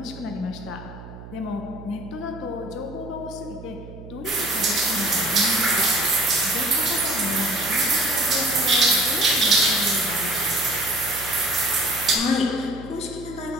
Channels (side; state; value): right; noise; hum, 15 dB below the sound